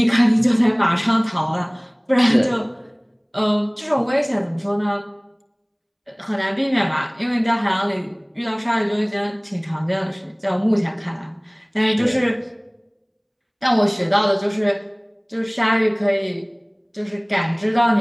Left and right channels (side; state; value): both; identical; correlation 1.00